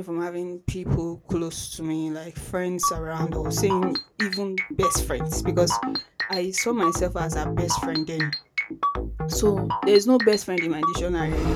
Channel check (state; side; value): identical; both; correlation 1.00